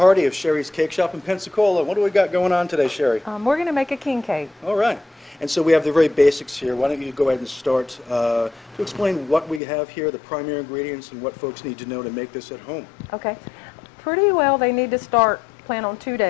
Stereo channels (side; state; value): right; drops out; at 9.6 s